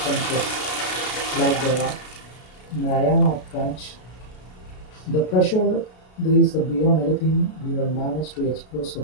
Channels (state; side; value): late; right; 33 ms